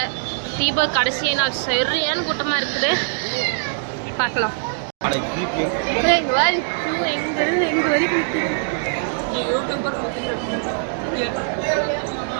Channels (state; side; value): silent; left; digital silence